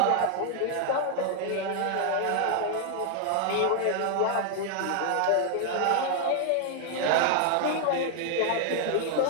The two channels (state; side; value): different; both; correlation 0.00